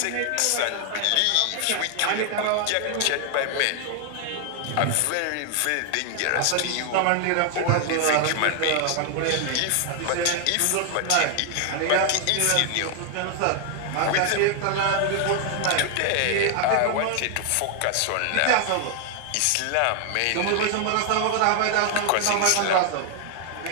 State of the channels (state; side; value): different; both; correlation 0.00